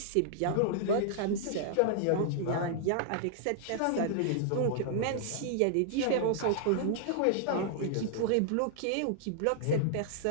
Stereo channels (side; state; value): both; different; correlation -0.01